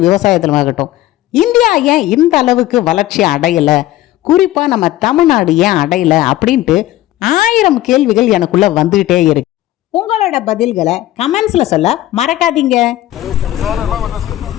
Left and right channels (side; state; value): right; quieter; 15.1 dB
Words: விவசாயத்திலும் ஆகட்டும். இந்தியா ஏன் இந்த அளவுக்கு வளர்ச்சி அடையலை, குறிப்பாக நம்ம தமிழ்நாடு ஏன் அடையலை அப்படின்ட்டு 1000 கேள்விகள் எனக்குள்ளே வந்துக்கிட்டே இருக்கு. உங்களோட பதில்களை கமெண்ட்ஸில் சொல்ல மறக்காதீங்க.